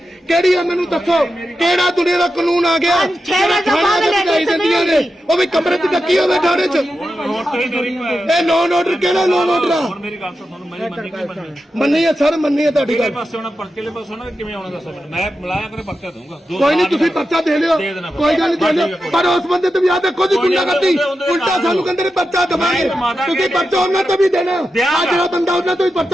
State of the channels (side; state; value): both; normal; correlation 0.90